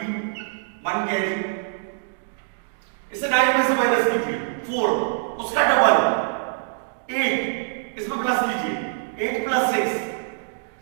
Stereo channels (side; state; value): left; silent; digital silence